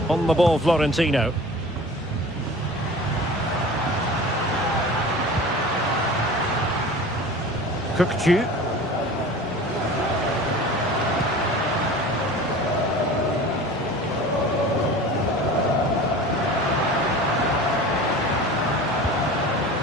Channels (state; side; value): normal; both; correlation 0.39